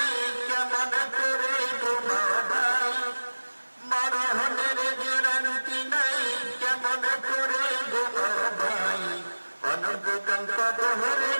কেমন করে ঘুমাবাই, মরণের গ্যারান্টি নাই কেমন করে ঘুমাবাই, অনন্তকাল কবরে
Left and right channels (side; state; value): both; inverted; correlation -1.00